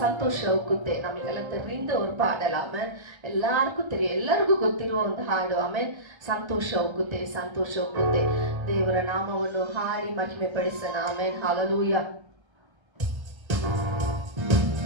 ಸಂತೋಷ ಹೋಗುತ್ತೆ. ನಮಗೆಲ್ಲ தெரிந்த ஒரு பாடல். ஆமென். எல்லாருக்கும் தெரியும், ಎಲ್ಲರಿಗೂ ಗೊತ್ತಿರುವ ಒಂದು ಹಾಡು. ಆಮೆನ್. ಸಂತೋಷ ಹೋಗುತ್ತೆ, ಸಂತೋಷ ಹೋಗುತ್ತೆ. ದೇವರ ನಾಮವನ್ನು ಹಾಡಿ ಮಹಿಮೆ ಪಡಿಸೋಣ. ಆಮೆನ್. ಹalleluya.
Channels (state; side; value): late; left; 1.3 ms